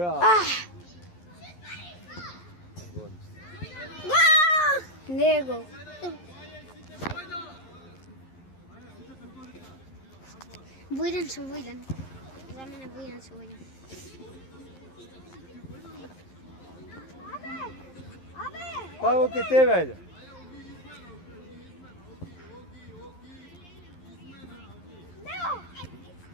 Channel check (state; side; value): late; right; 11 ms